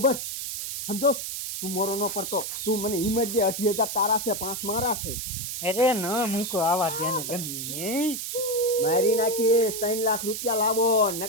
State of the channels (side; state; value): right; noise; hiss, 5 dB below the sound